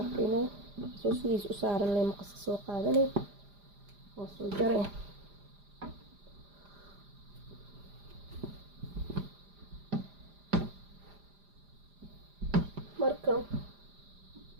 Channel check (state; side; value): late; left; 5.0 ms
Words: arkaynaa soo sidiis u saaran leh maqaska soo qaadanay oo soo jaray. marka